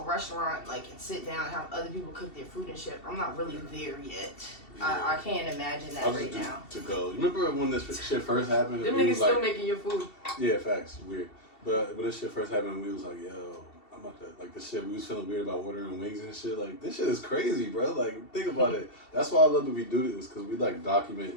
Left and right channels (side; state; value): right; late; 2.7 ms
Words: like, and sit down and have other people cook their food and shit. I'm not really there yet. Yeah. I can't imagine that right now. To go. You remember when this shit first happened? Them niggas still making your food. Yeah, facts. Weird. But when this shit first happened, we was like, yo, I'm about to, like, the shit, we was feeling weird about ordering wings and shit. Like, this shit is crazy, bro. Like, think about it. That's why I love that we do this, because we, like, document